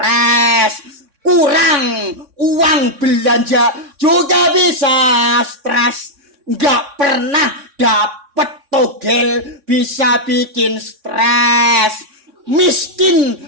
Kurang uang belanja juga bisa stres. Nggak pernah dapet togel bisa bikin stres. Miskin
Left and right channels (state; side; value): late; left; 3.6 ms